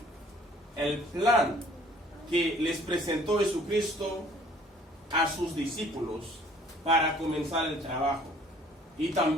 el plan que les presentó Jesucristo a sus discípulos para comenzar el trabajo. Y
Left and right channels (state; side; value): normal; both; correlation 0.56